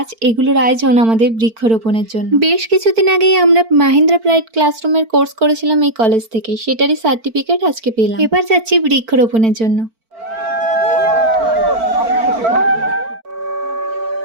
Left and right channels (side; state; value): left; late; 4.5 ms